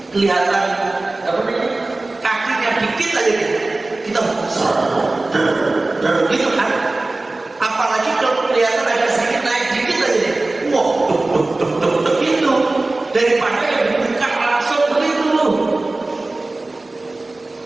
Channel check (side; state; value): left; quieter; 3.0 dB